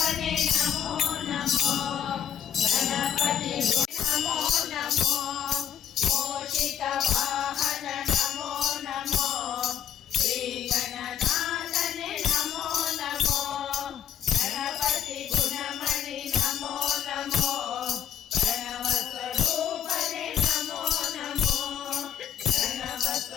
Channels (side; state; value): right; quieter; 9.4 dB